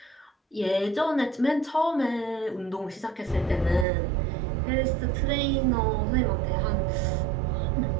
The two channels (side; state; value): left; drops out; at 3.9 s